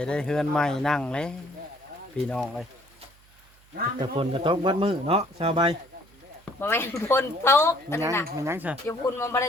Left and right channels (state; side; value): noise; right; hum, 29 dB below the sound